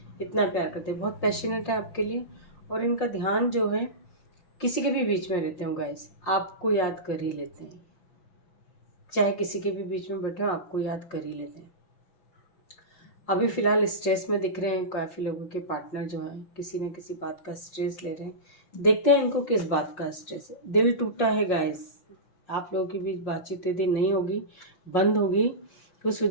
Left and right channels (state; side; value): late; right; 5.6 ms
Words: इतना प्यार करते हैं, बहुत पैशनेट है आपके लिए, और इनका ध्यान जो है किसी के भी बीच में रहते हो गाइस, आपको याद कर ही लेते हैं। चाहे किसी के भी बीच में बैठे हो आपको याद कर ही लेते हैं। अभी फ़िलहाल स्ट्रेस में दिख रहे हैं काफ़ी लोगों के पार्टनर जो हैं, किसी न किसी बात का स्ट्रेस ले रहे हैं। देखते हैं इनको किस बात का स्ट्रेस है। दिल टूटा है गाइस, आप लोगों के बीच बातचीत यदि नहीं होगी, बंद होगी, तो उस